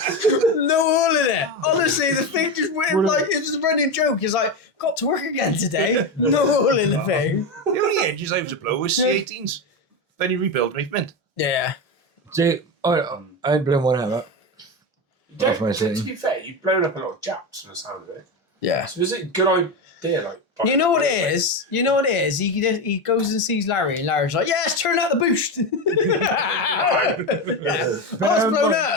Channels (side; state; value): both; normal; correlation 0.16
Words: oil in it. Honestly, the thing just went like it was a running joke. It's like, got to work again today. No oil in the thing. The only engines I was to blow was C18s. Then you rebuild me, mint. Yeah. See, I ain't blown one ever. To be fair, you've blown up a lot of Japs from the sound of it. Yeah. So is it a good idea? Like, You know what it is? He goes and sees Larry, and Larry's like, yes, turn out the boost. Yeah. Oh, it's blown